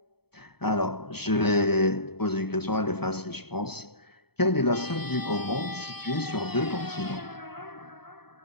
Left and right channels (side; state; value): right; late; 0.97 ms